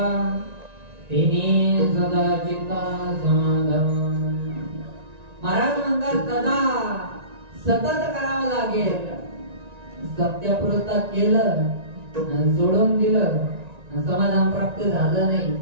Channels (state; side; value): late; left; 1.9 ms